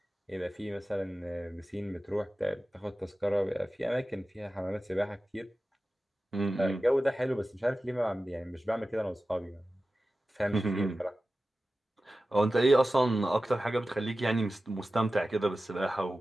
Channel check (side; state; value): both; normal; correlation 0.95